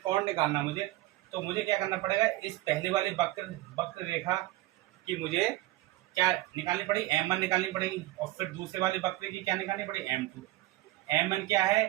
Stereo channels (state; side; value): quieter; left; 17.7 dB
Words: कोण निकालना मुझे, तो मुझे क्या करना पड़ेगा, इस पहले वाली वक्र रेखा की मुझे क्या निकालनी पड़ेगी, m1 निकालनी पड़ेगी, और फिर दूसरे वाली वक्र की क्या निकालनी पड़ेगी, m2। m1 क्या